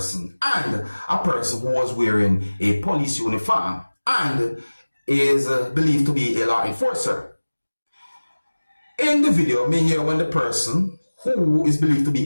and a person who was wearing a police uniform and is believed to be a law enforcer. In the video, me hear when the person who is believed to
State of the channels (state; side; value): inverted; both; correlation -1.00